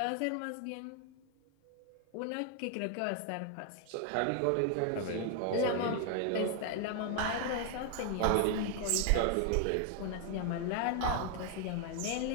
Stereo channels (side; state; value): both; different; correlation 0.00